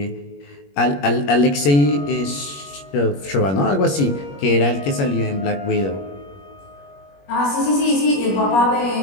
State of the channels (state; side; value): late; right; 21 ms